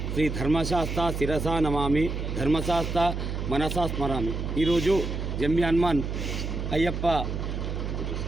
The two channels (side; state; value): right; noise; hum, 3 dB below the sound